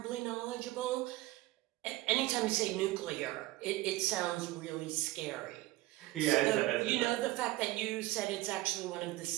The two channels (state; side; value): quieter; left; 17.8 dB